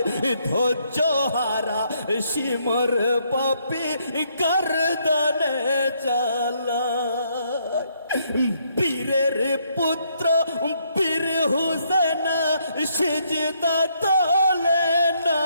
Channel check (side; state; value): both; inverted; correlation -0.72